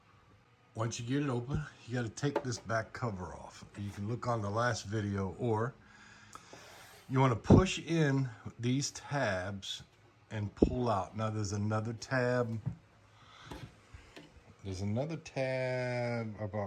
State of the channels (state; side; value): identical; both; correlation 1.00